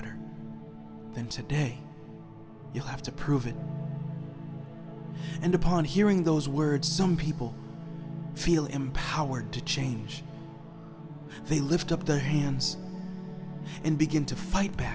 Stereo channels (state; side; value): identical; both; correlation 1.00